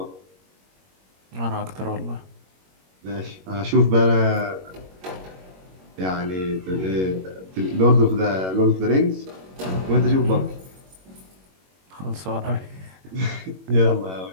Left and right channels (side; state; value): left; late; 21 ms